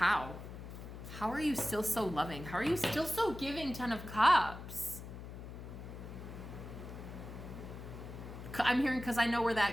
How are you still so loving? How are you still so giving, 10 of Cups? I'm hearing because I know where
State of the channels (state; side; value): noise; left; hum, 11 dB below the sound